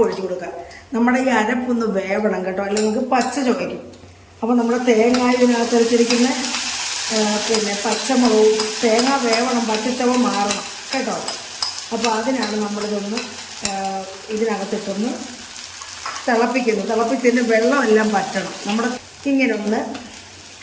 ഒഴിച്ചു കൊടുക്കുക. നമ്മുടെ ഈ അരപ്പൊന്ന് വേവണം കേട്ടോ, അല്ലെങ്കിൽ നമുക്ക് പച്ച ചുവയ്ക്കും. അപ്പോൾ നമ്മുടെ തേങ്ങ ഇതിനകത്ത് വെച്ചിരിക്കുന്ന പിന്നെ പച്ചമുളകും തേങ്ങ വേവണം, പച്ചച്ചവ മാറണം കേട്ടോ. അപ്പോൾ അതിനാണ് നമ്മളിതൊന്ന് ഇതിനകത്തിട്ടൊന്ന് തിളപ്പിക്കുന്നത്. തിളപ്പിച്ചതിന് വെള്ളമെല്ലാം പറ്റണം. നമ്മുടെ ഇങ്ങനെ ഒന്ന്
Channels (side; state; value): both; identical; correlation 1.00